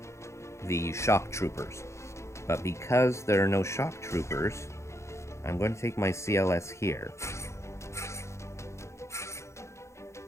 the shock troopers, but because there are no shock troopers, I'm going to take my CLS here.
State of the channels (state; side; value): late; right; 0.14 ms